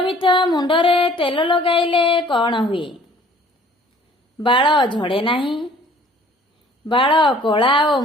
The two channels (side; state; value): both; normal; correlation 0.54